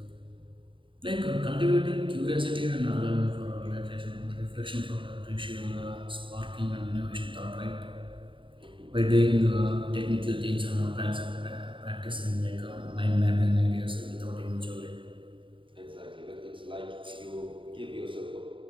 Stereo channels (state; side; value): late; left; 0.25 ms